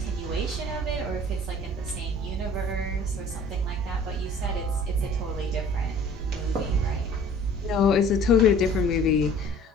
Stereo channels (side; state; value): both; normal; correlation 0.50